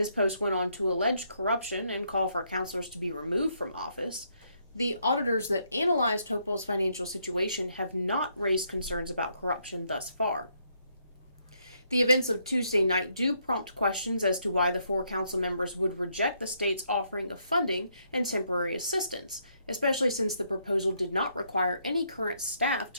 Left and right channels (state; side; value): inverted; both; correlation -0.74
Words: post went on to allege corruption and call for councilors to be removed from office. The auditors that analyzed Hopewell's financial situation have not raised concerns about corruption thus far. The events of Tuesday night do prompt questions as to why the 4 council members would reject the state's offering of funding and temporary assistance, especially since the proposal did not require any current staff